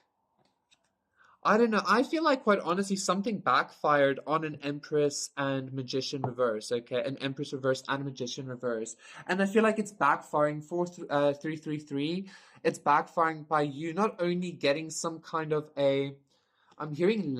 I don't know. I feel like, quite honestly, something backfired on an Empress and Magician reverse. Okay, an Empress reverse and a Magician reverse, and I feel like it's backfiring for 333. It's backfiring by you not only getting some kind of a, I'm hearing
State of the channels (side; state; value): both; identical; correlation 1.00